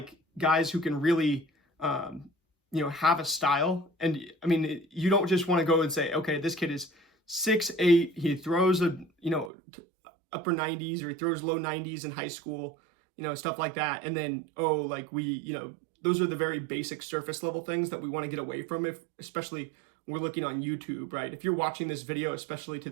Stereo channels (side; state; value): left; drops out; at 9.5 s